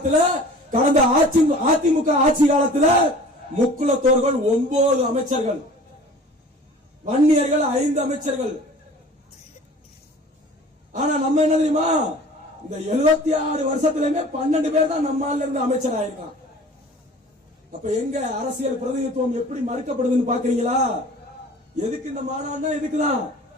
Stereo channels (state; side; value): normal; both; correlation 0.45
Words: கடந்த அதிமுக ஆட்சி காலத்துல முக்குலத்தோர்கள் 9 அமைச்சர்கள், வன்னியர்கள் 5 அமைச்சர்கள். ஆனா நம்ம என்ன தெரியுமா? இந்த 76 வருஷத்திலுமே 12 பேர் தான் நம்மால இருந்து அமைச்சர் ஆயிருக்கான். அப்ப எங்க அரசியல் பிரதிநிதித்துவம் எப்படி மறுக்கப்படுதுன்னு பாக்குறீங்களா? எதுக்கு இந்த மாநாடுனா? இதுக்குதான்.